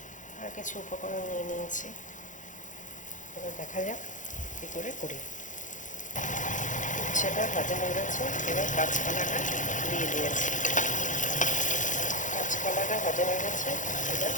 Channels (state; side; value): late; right; 0.37 ms